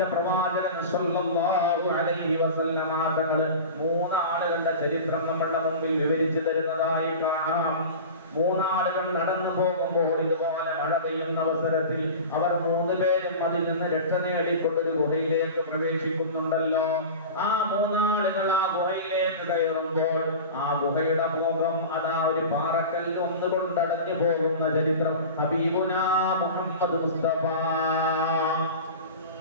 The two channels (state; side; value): inverted; both; correlation -0.33